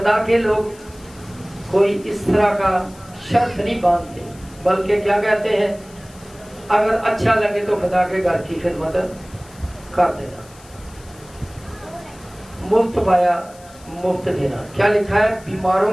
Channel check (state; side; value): noise; left; hiss, 24 dB below the sound